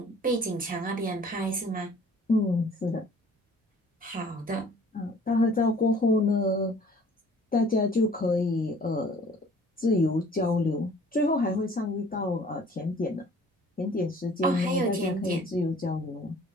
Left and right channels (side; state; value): both; normal; correlation 0.53